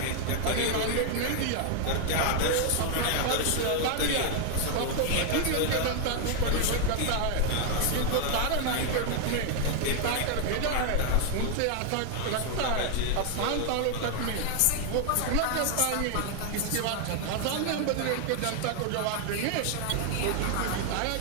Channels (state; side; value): different; both; correlation 0.00